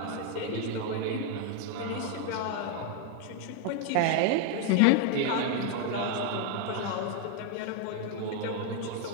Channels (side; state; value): both; different; correlation 0.01